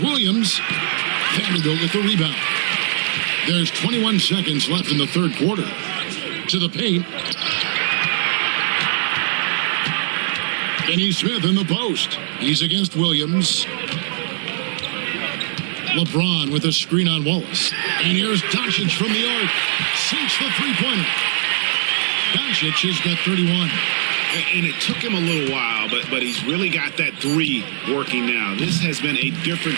Vanderbilt with the rebound. There's 21 seconds left in the third quarter. To the paint. Finney-Smith in the post. He's against Williams. LeBron with a screen on Wallace. And here's Doncic from the arc. Sinks the three-pointer. Doncic has got 31. And it took him a little while, but he's really got that 3 working now. This has been a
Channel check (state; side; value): silent; left; digital silence